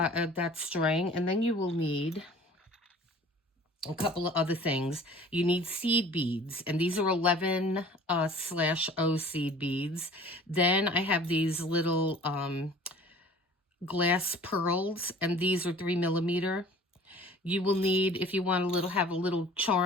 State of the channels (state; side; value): normal; both; correlation 0.47